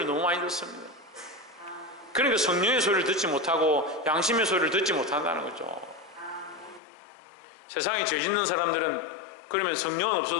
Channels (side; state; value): right; drops out; at 6.8 s